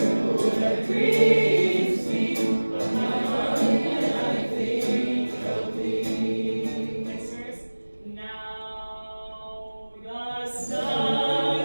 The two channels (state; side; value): inverted; both; correlation -1.00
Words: that grieves me, but my heart and I think of thee. Next verse. Now the sun